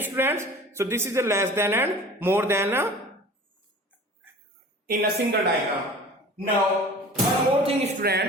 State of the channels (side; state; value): both; normal; correlation 0.42